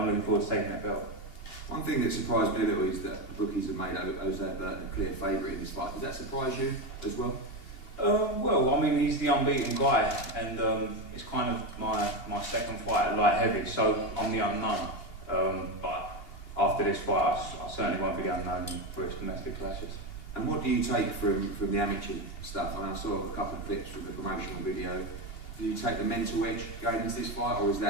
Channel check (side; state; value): right; late; 2.8 ms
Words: looking forward to taking that belt. One thing that surprised me a little is that the bookies have made Jose Burton a clear favourite in this fight. Does that surprise you as well? Well, I mean, he's the unbeaten guy, and it's kind of my second fight at light heavy, so I'm the unknown. But after this fight, I certainly won't be the unknown for his domestic clashes. And what do you take from the amateur stuff? I saw a couple of clips from the promotional video. Do you take the mental edge going into this fight, or is